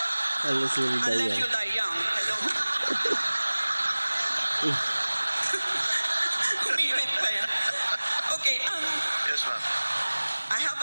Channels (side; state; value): both; inverted; correlation -1.00